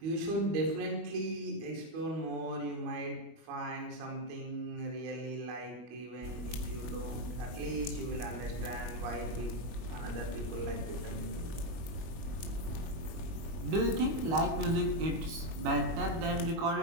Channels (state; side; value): late; left; 25 ms